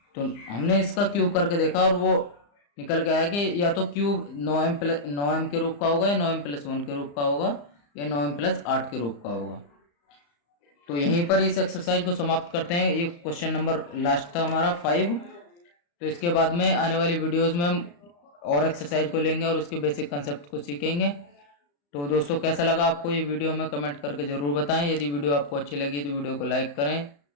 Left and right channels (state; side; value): late; right; 35 ms